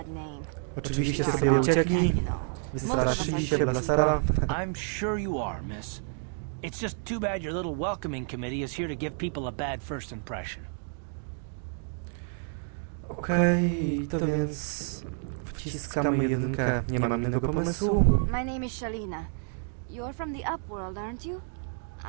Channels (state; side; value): silent; left; 55 dB below the other